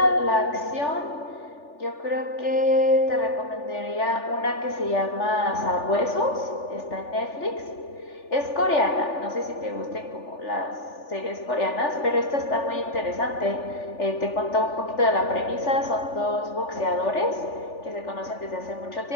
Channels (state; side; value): late; right; 3.4 ms